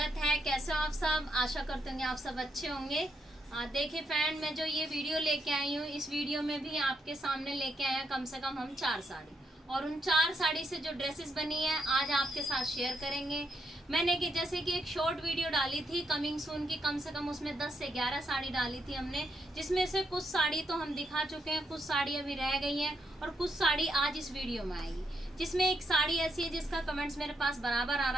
है। कैसे हो आप सब? आशा करते होंगे आप सब अच्छे होंगे। देखिए फ्रेंड, मैं जो ये वीडियो लेके आई हूँ, इस वीडियो में भी आपके सामने लेके आए हैं कम से कम हम 4 साड़ी, और उन 4 साड़ी से जो ड्रेसेस बनी है आज आपके साथ शेयर करेंगे। मैंने कि जैसे कि एक शॉर्ट वीडियो डाली थी कमिंग सून की, कम से कम उसमें 10 से 11 साड़ी डाली थी हमने, जिसमें से कुछ साड़ी तो हम दिखा चुके हैं, कुछ साड़ी अभी रह गई हैं और कुछ साड़ी आज इस वीडियो में आएगी। जिसमें एक साड़ी ऐसी है जिसका कमेंट्स मेरे पास बराबर आ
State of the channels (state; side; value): normal; both; correlation 0.78